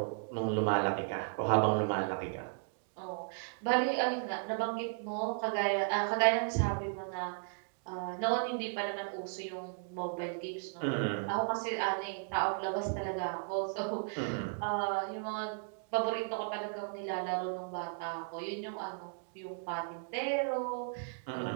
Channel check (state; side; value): silent; left; digital silence